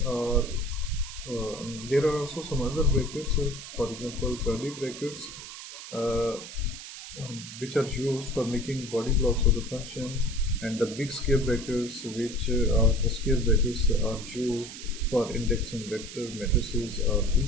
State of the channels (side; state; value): right; noise; hiss, 12 dB below the sound